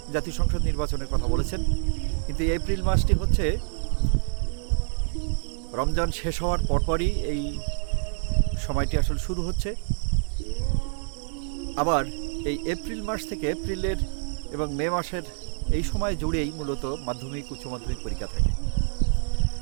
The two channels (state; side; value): silent; left; 60 dB below the other